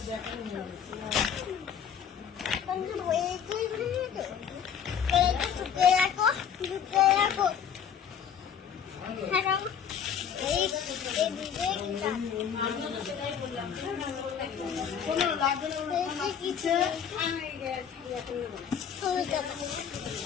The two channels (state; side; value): quieter; right; 7.9 dB